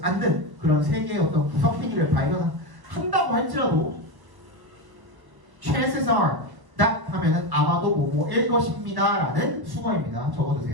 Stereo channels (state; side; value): late; left; 1.0 ms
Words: 않는 그런 세계의 어떤 구석탱이를 발견한다고 할지라도 chances are that 하면은 아마도 뭐뭐일 것입니다 라는 수거입니다.